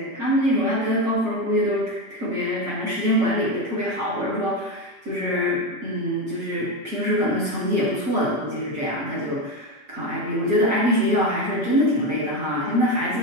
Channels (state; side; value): late; left; 6.0 ms